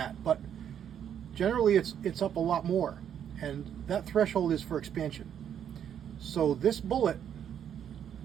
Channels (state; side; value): quieter; left; 9.1 dB